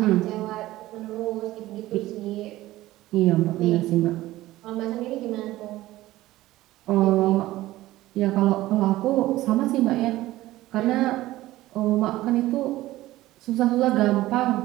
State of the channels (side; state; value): left; quieter; 16.5 dB